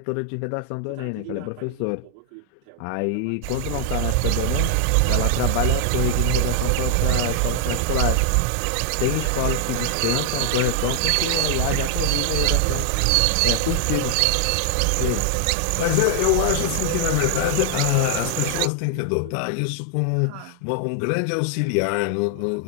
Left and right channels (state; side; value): different; both; correlation 0.00